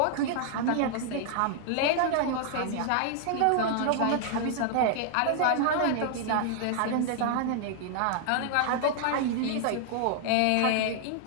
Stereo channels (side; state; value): both; different; correlation 0.00